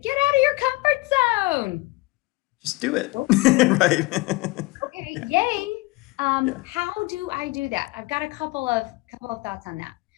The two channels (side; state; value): right; quieter; 23.0 dB